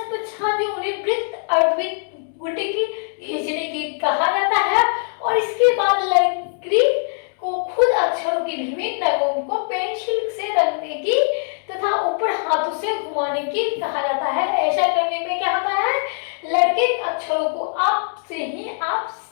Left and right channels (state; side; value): silent; right; digital silence